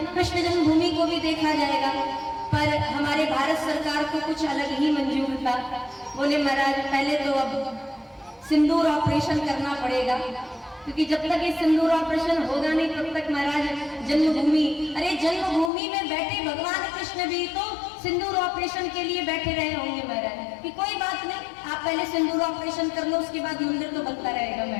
जन्मभूमि को भी देखा जाएगा। पर हमारे भारत सरकार को कुछ अलग ही मंजूर था। बोले महाराज पहले तो अब सिंदूर ऑपरेशन करना पड़ेगा, क्योंकि जब तक ये सिंदूर ऑपरेशन होगा नहीं तब तक महाराज जन्मभूमि, अरे जन्मभूमि में बैठे भगवान कृष्ण भी तो सिंदूर ऑपरेशन के लिए बैठे रहे होंगे महाराज, कि कोई बात नहीं, आप पहले सिंदूर ऑपरेशन कर लो, उसके बाद मंदिर तो बनता रहेगा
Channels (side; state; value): right; drops out; at 15.7 s